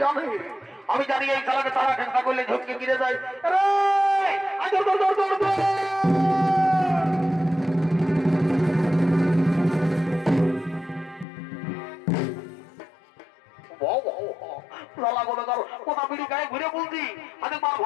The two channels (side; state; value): right; drops out; at 11.2 s